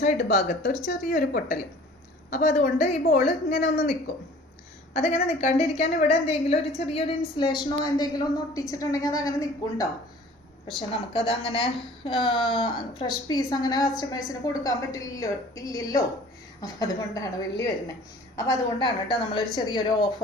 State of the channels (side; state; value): both; normal; correlation 0.48